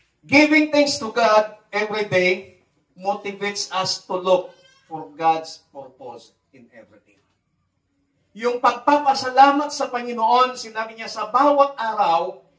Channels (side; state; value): both; identical; correlation 1.00